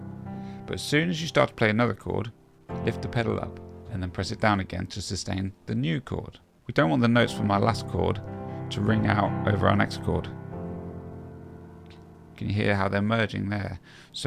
But as soon as you start to play another chord, lift the pedal up and then press it down again to sustain the new chord. We don't want the notes from our last chord to ring out over our next chord. Can you hear how they're merging there?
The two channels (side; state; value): both; identical; correlation 1.00